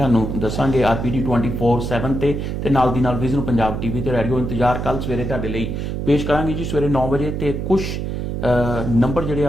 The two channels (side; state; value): right; noise; hum, 3 dB below the sound